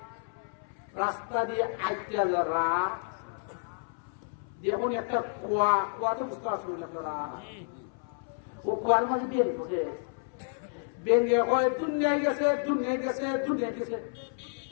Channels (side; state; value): right; silent; 57 dB below the other